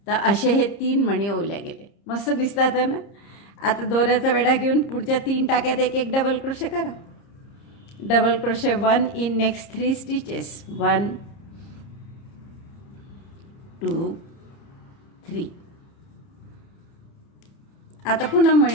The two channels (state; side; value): late; right; 30 ms